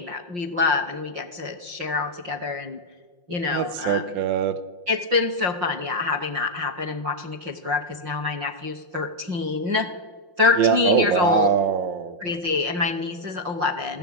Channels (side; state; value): left; late; 5.6 ms